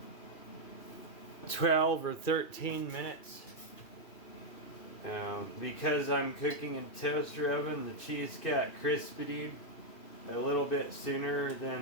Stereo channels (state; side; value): late; right; 2.7 ms